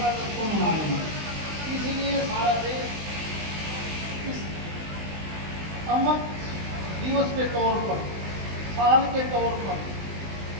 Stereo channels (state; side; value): late; left; 20 ms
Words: अगस्त को मनाएंगे, इसलिए सारा देश इस अमर दिवस के तौर पर, साल के तौर पर